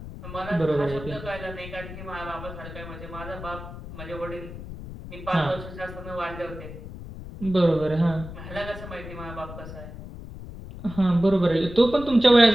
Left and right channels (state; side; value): noise; left; rumble, 12 dB below the sound